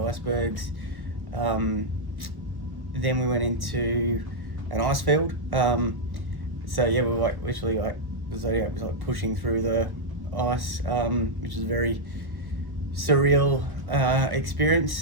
Then we went into an ice field. So yeah, we were like literally like the Zodiac was like pushing through the ice, which was a very surreal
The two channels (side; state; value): left; late; 1.1 ms